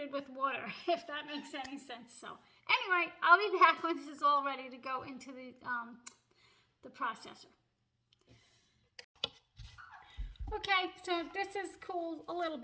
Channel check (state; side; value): identical; both; correlation 1.00